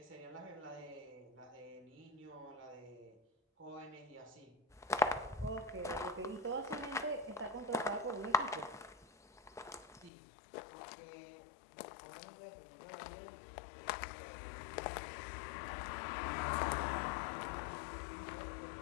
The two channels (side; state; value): right; drops out; at 10.1 s